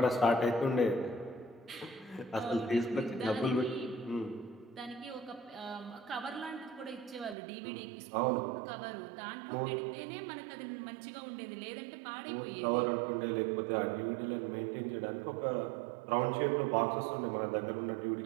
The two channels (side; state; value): left; drops out; at 7.4 s